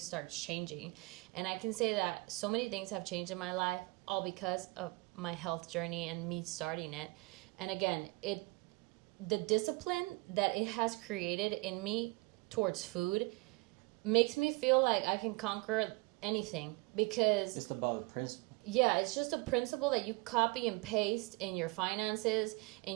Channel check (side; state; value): left; quieter; 25.8 dB